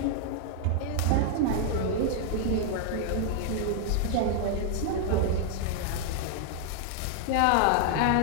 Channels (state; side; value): different; both; correlation 0.00